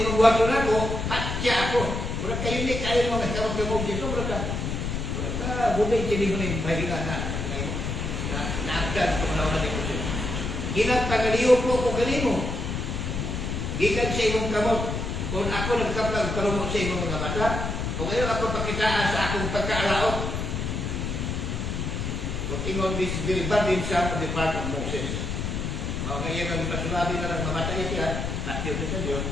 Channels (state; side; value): noise; left; rumble, 2 dB below the sound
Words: magbuhaton ako, patya ako. Wala kayo ni, kayo mga kasawag ng Moses, wala ka, bunay kini mo na yung pahinga na naagad sa mga ni Moses. Ginagpagaliyo po ko kanimo. Gikan sa imong kamot. Kung ako nagkapag kalumot sa imong mga mata, kung ayaw ako pakitaan sa akong pagkaalaot, kung ingon this very bad in some of the part of Moses. Ngayon ang ipasulabi na lang mamatay siya, at yun sa Diyos.